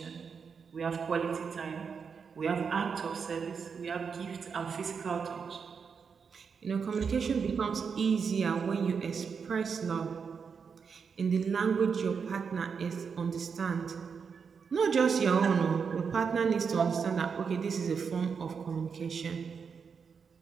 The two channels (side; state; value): left; quieter; 6.0 dB